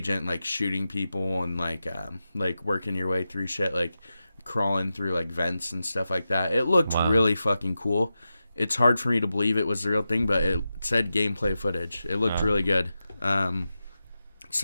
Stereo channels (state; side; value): inverted; both; correlation -0.91